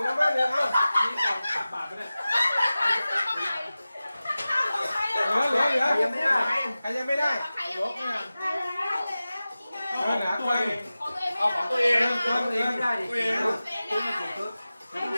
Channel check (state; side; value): inverted; both; correlation -0.96